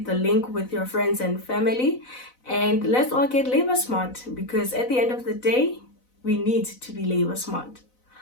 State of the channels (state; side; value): late; right; 4.0 ms